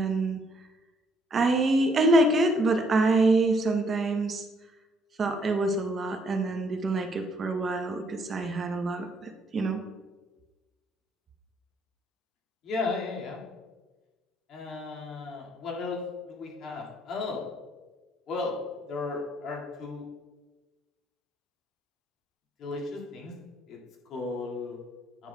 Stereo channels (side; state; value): both; normal; correlation 0.69